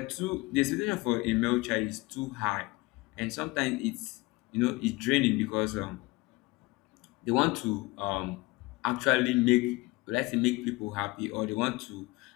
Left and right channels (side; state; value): right; quieter; 22.6 dB